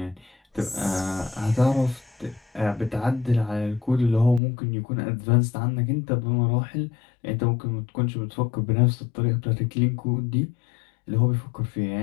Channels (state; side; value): drops out; right; at 4.4 s